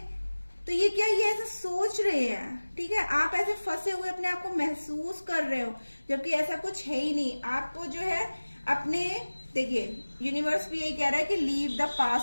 तो ये क्या, ये ऐसा सोच रहे हैं, ठीक है, आप ऐसे फंसे हुए अपने आप को महसूस कर रहे हो, जबकि ऐसा कुछ है ही नहीं। आपको जो है अपने, देखिए यूनिवर्स भी यही कह रहा है कि लीव द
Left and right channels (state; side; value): inverted; both; correlation -1.00